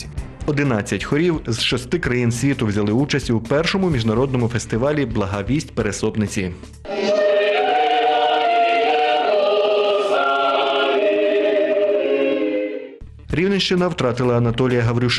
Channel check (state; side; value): identical; both; correlation 1.00